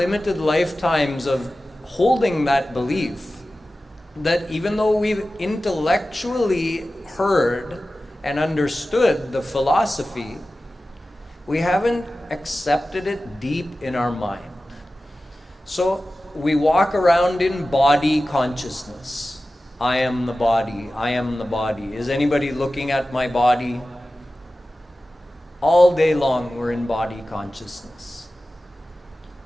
lifetimes of holding that belief that even though we've intellectually heard and understood the philosophy, we haven't accepted it deep in our mind. So we walk around in body consciousness. I am the body, I am the body. Is anybody looking at my body? All day long we're in body consciousness.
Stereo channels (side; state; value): both; normal; correlation 0.95